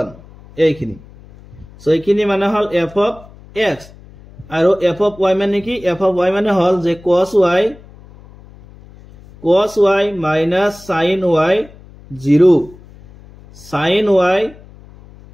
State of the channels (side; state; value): left; noise; hum, 22 dB below the sound